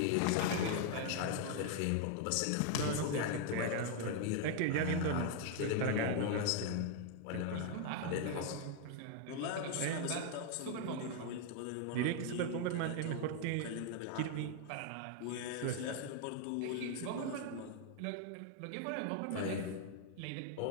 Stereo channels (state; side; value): different; both; correlation 0.00